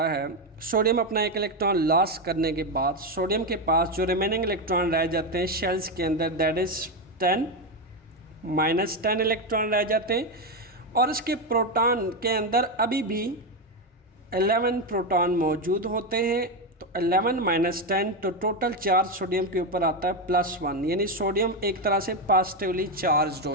है। सोडियम अपना एक इलेक्ट्रॉन लॉस करने के बाद सोडियम के पास जो रिमेनिंग इलेक्ट्रॉन रह जाते हैं शेल्स के अंदर, दैट इज़ 10 -10 इलेक्ट्रॉन रह जाते हैं और इसके प्रोटॉन के अंदर अभी भी 11 प्रोटॉन मौजूद होते हैं। तो 11 - 10 तो टोटल चार्ज सोडियम के ऊपर आता है +1, यानी सोडियम एक तरह से पॉजिटिवली चार्ज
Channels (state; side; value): normal; both; correlation 0.09